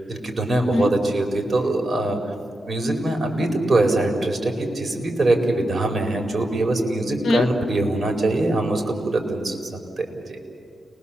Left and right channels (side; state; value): both; normal; correlation 0.88